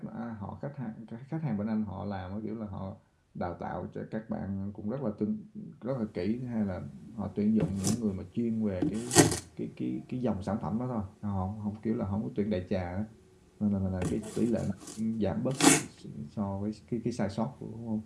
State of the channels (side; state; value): both; identical; correlation 1.00